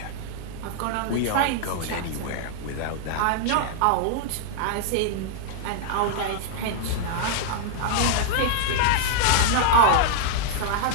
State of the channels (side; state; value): both; different; correlation -0.01